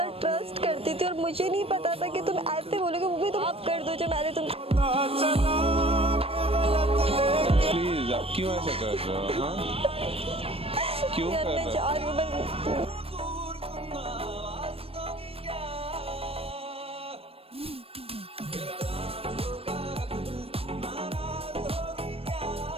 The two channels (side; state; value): left; late; 0.28 ms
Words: ट्रस्ट करती थी और मुझे नहीं पता था कि तुम ऐसे बोलोगे, वो भी तुम आप कर दो जो मैंने तुम। प्लीज आप क्यों ऐसा कर रहे हो? हाँ, क्यों कर रहे हो? चाह रही हूँ मैं।